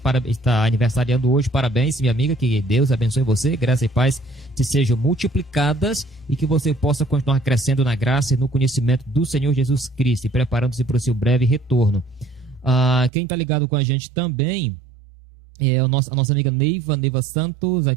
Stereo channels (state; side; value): drops out; left; at 13.1 s